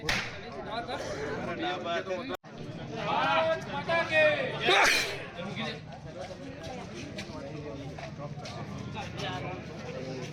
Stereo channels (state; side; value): identical; both; correlation 1.00